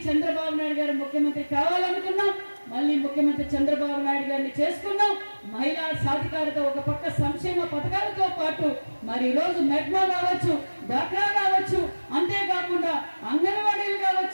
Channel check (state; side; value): inverted; both; correlation -1.00